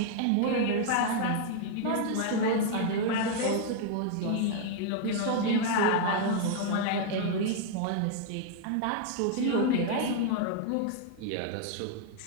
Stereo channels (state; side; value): different; both; correlation 0.00